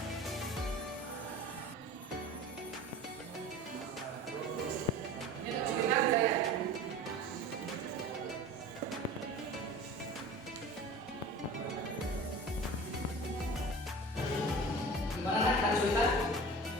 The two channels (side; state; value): both; normal; correlation 0.38